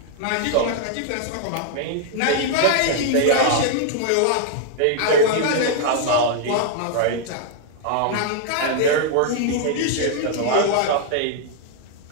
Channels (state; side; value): different; both; correlation 0.00